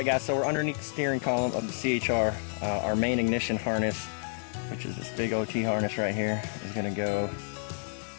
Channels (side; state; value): right; silent; digital silence